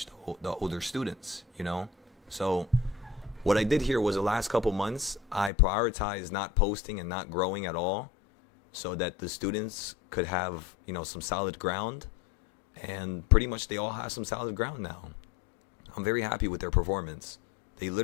the older students, So what I did here was the last couple months, I prioritized not posting and not growing at all so that the students could have, some solid ground. And pretty much they all have some solid ground now. I'm very happy with their performance. They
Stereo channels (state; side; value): drops out; right; at 5.5 s